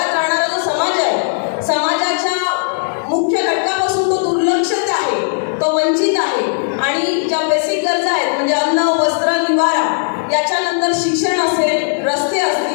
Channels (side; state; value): right; silent; 69 dB below the other